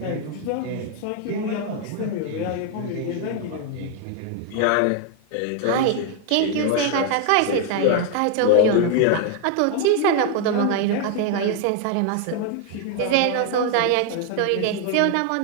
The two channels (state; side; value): different; both; correlation 0.00